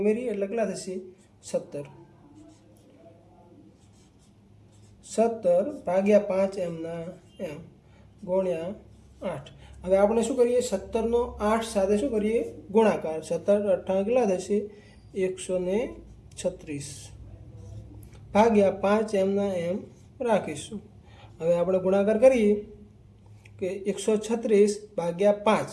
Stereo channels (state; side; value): identical; both; correlation 1.00